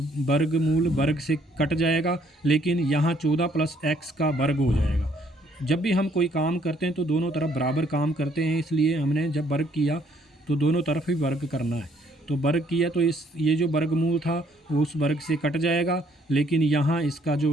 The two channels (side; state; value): both; normal; correlation 0.65